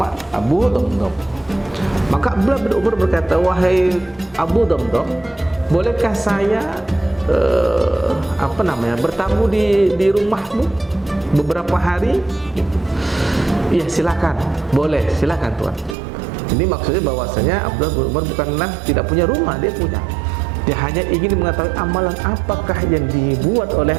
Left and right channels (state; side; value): drops out; left; at 16.0 s